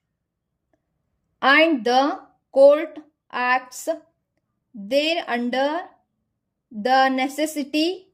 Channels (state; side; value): identical; both; correlation 1.00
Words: and the court acts thereunder, the necessity